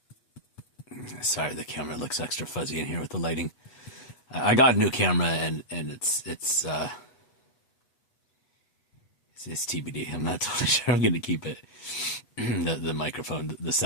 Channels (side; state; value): right; late; 8.2 ms